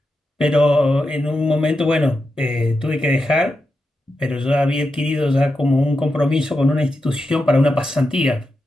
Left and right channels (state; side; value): normal; both; correlation 0.88